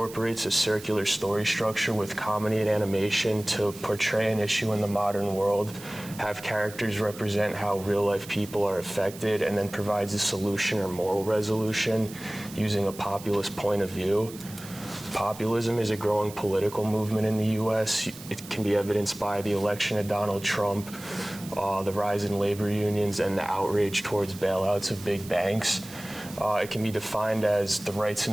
a circular story structure with comedy and animation to portray an issue in the modern world, have characters represent how real-life people are affected, and then provides a solution or moral resolution using a populist point of view. Populism is a growing political movement in the U.S. It can be evidenced by the election of Donald Trump, the rise in labor unions, and the outrage towards bailouts of big banks. It can be defined as the rights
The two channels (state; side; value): noise; right; hiss, 16 dB below the sound